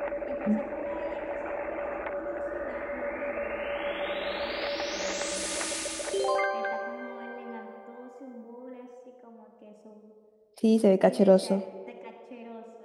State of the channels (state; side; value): identical; both; correlation 1.00